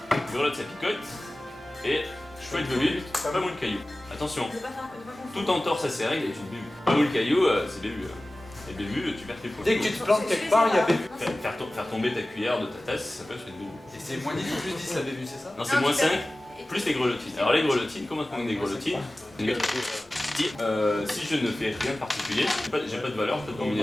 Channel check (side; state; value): both; normal; correlation 0.97